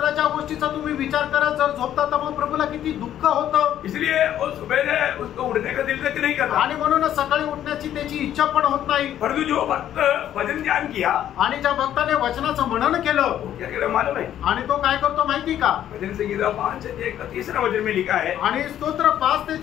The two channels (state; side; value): quieter; right; 11.2 dB